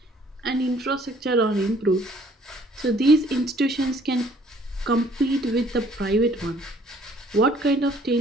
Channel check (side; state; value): both; normal; correlation 0.59